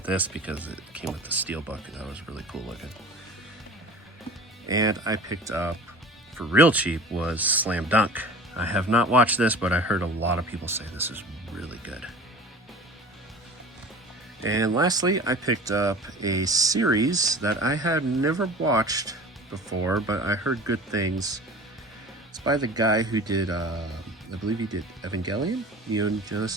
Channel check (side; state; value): both; normal; correlation 0.40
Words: this because it came with the Steelbook, and that was really cool looking. And I picked up, for real cheap, was Slam Dunk. I have not watched this, but I heard a lot of people say this is really good. And lastly, I picked up a series that I had never watched before, but I heard good things. It's by the guy who did, I believe he did Evangelion, Neon